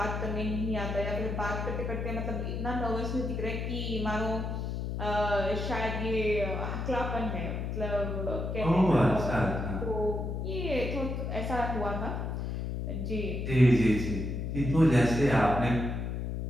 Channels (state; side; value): noise; left; hum, 3 dB below the sound